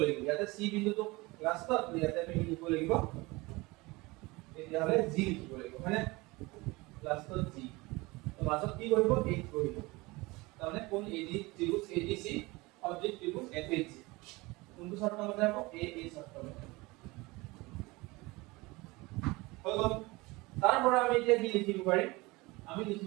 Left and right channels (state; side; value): quieter; left; 23.0 dB